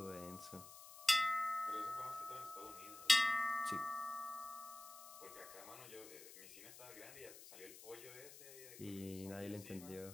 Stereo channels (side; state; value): left; noise; hiss, 15 dB below the sound